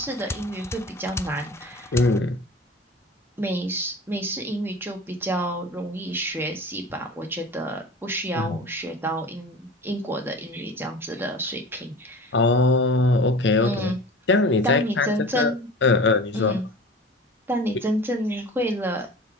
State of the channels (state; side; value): normal; both; correlation 0.37